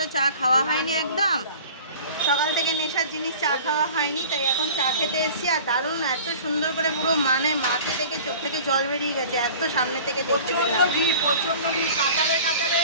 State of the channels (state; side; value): inverted; both; correlation -0.42